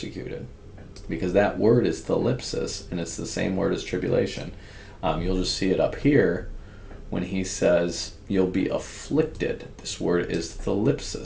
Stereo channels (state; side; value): identical; both; correlation 1.00